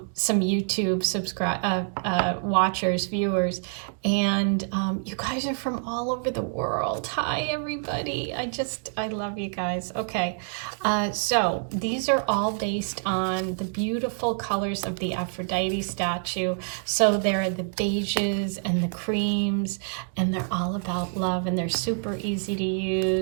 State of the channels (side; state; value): left; silent; 60 dB below the other